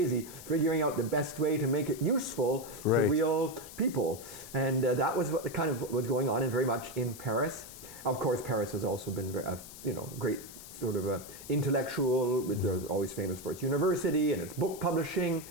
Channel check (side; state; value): left; noise; hiss, 15 dB below the sound